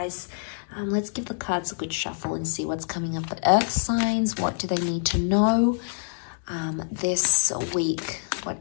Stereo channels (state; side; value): silent; right; digital silence